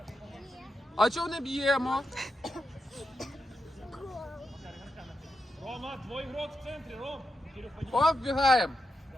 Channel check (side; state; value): both; normal; correlation 0.86